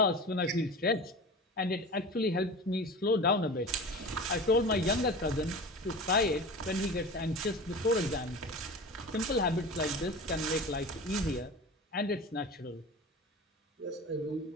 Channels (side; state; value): both; normal; correlation 0.33